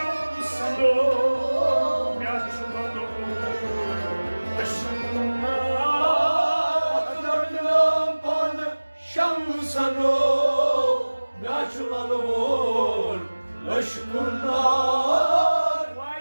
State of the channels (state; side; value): inverted; both; correlation -1.00